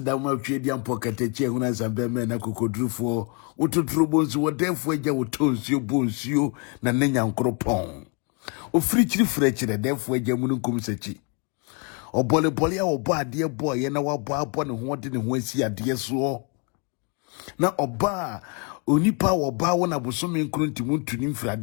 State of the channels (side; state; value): right; quieter; 34.6 dB